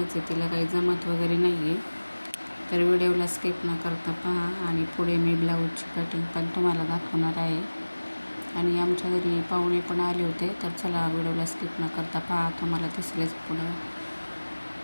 आहे, तिला काही जमत वगैरे नाही आहे. तर व्हिडिओला स्किप न करता पहा आणि पुढे मी ब्लाऊजची कटिंग पण तुम्हाला दाखवणार आहे. आणि आमच्या घरी पाहुणे पण आले होते, तर चला व्हिडिओला स्किप न करता पहा, तुम्हाला दिसलेच पुढं.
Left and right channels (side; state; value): both; inverted; correlation -1.00